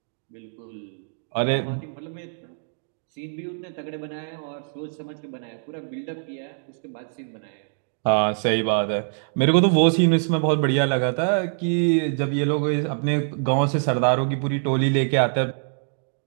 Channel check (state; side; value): silent; left; digital silence